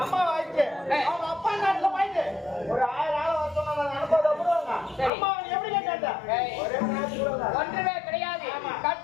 அம்மா வாய்க்கு அவங்க அப்பா நாட்டுல வாய்க்கு ஒரு 1000 ஆளை வச்சோம்னா அனுப்பதை விடுவாங்க. அம்மா எப்படி கேட்டாங்க? ஒன்றுமே கிடையாது.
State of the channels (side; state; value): right; drops out; at 5.1 s